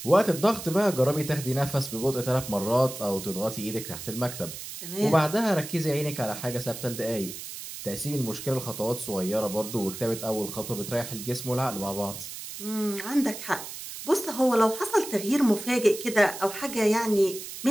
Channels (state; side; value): noise; right; hiss, 10 dB below the sound